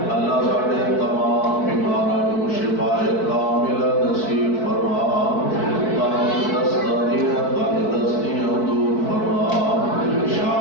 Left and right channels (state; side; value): late; right; 4.6 ms